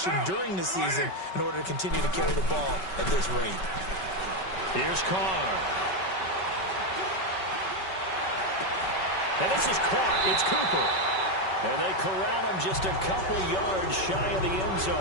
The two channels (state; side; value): late; right; 5.3 ms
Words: during the season in order to continue to carry the ball at this rate. Here's Carr. And this is caught. It's Cooper. And they corral him just a couple yards shy of the end